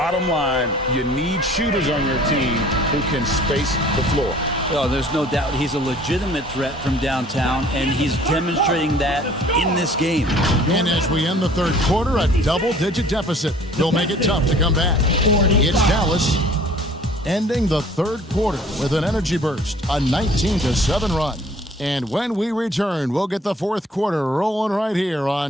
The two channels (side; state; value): both; normal; correlation 0.52